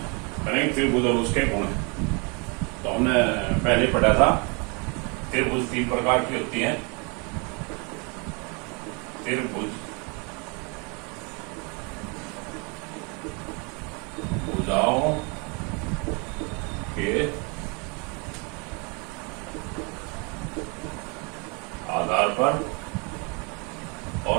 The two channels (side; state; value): left; quieter; 32.2 dB